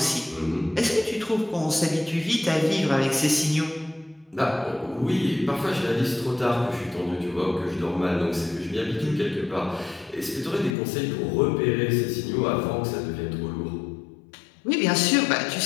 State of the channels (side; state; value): right; drops out; at 10.8 s